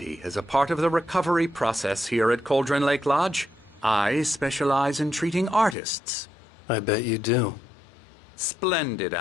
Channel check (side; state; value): right; drops out; at 5.8 s